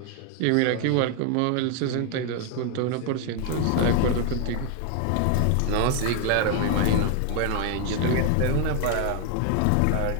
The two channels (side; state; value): both; different; correlation 0.01